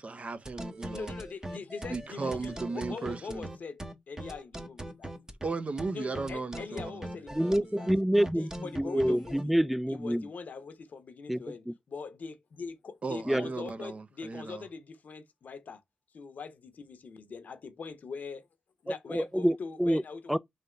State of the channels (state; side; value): normal; both; correlation 0.96